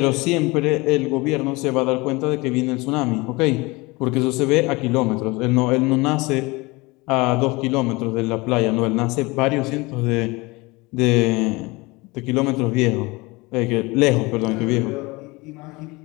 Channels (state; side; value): quieter; right; 23.9 dB